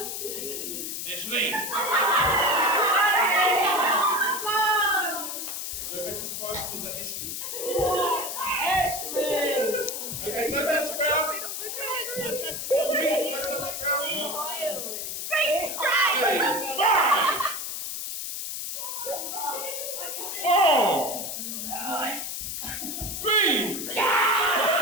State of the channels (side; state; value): left; noise; hiss, 5 dB below the sound